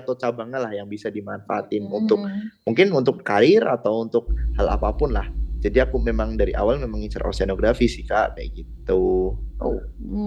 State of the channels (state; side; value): identical; both; correlation 1.00